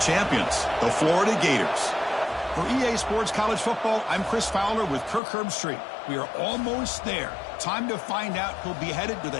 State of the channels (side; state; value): right; drops out; at 5.2 s